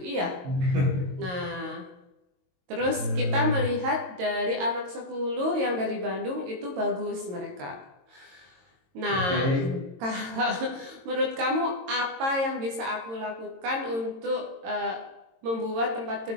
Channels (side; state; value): left; late; 22 ms